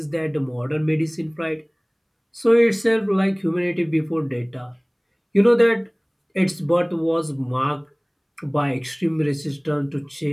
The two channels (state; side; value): identical; both; correlation 1.00